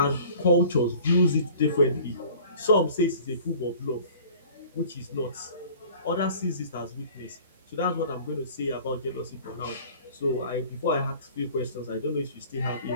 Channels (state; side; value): inverted; both; correlation -0.47